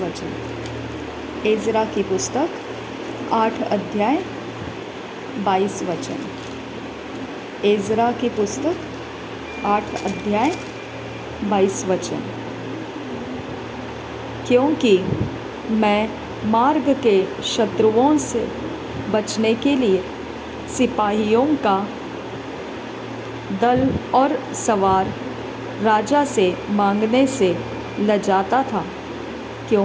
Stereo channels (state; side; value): identical; both; correlation 1.00